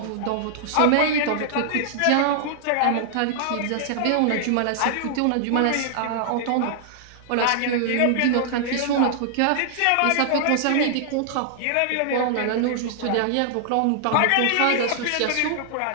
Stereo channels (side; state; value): both; different; correlation -0.01